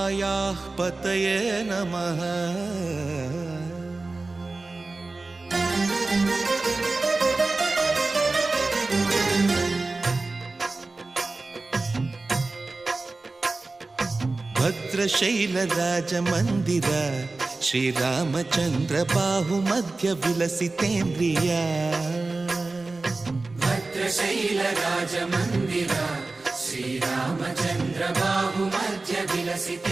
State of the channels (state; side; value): quieter; left; 3.4 dB